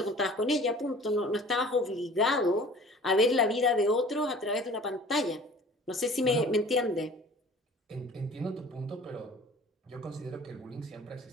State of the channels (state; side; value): normal; both; correlation 0.46